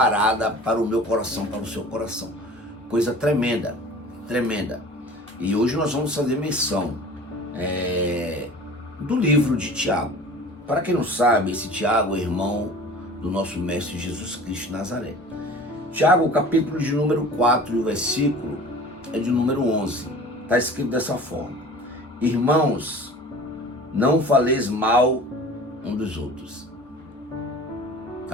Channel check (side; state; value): both; normal; correlation 0.42